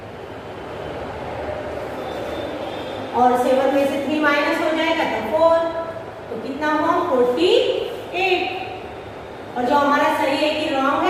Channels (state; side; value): identical; both; correlation 1.00